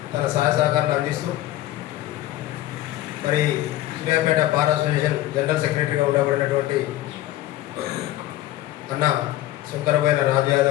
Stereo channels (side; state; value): right; quieter; 14.9 dB